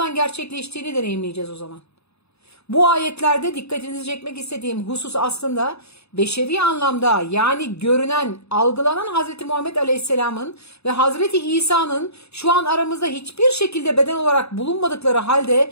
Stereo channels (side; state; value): right; late; 0.79 ms